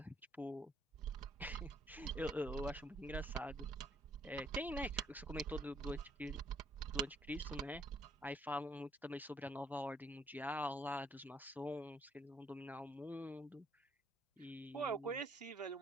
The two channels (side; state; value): both; normal; correlation 0.67